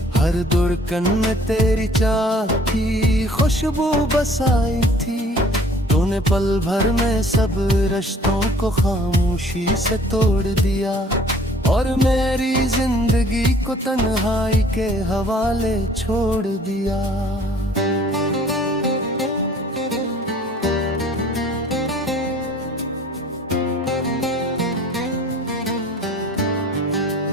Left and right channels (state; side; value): normal; both; correlation 0.53